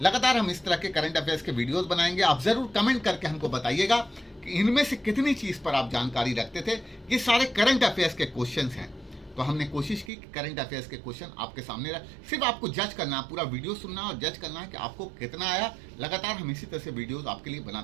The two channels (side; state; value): left; drops out; at 10.1 s